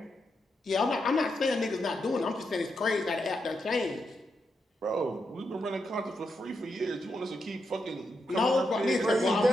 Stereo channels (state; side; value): normal; both; correlation 0.84